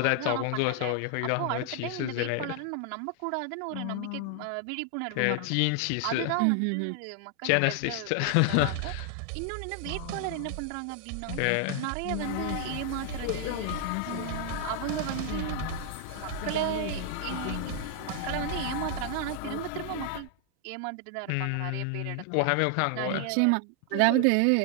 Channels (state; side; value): different; both; correlation 0.00